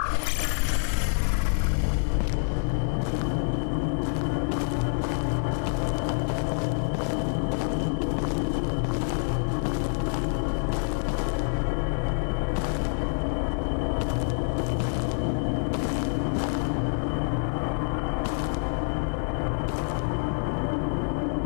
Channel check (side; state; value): right; silent; 60 dB below the other